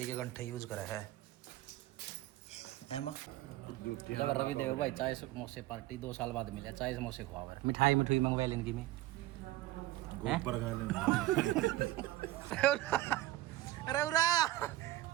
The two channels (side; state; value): left; quieter; 16.3 dB